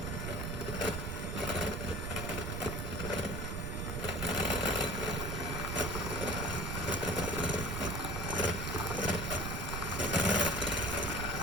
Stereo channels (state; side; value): noise; right; rumble, 3 dB below the sound